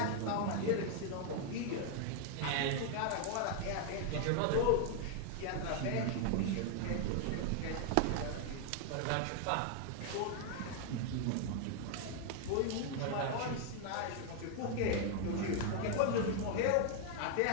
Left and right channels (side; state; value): both; different; correlation 0.00